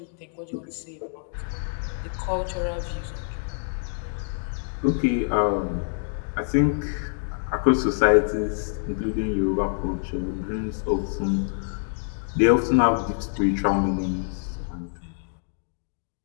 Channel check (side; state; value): right; silent; digital silence